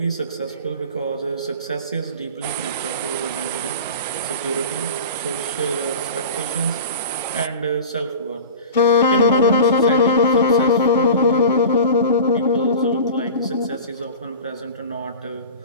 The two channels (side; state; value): both; inverted; correlation -0.35